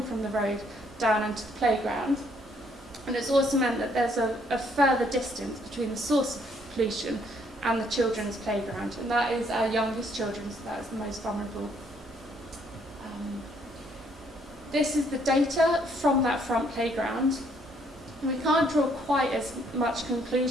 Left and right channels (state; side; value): normal; both; correlation 0.67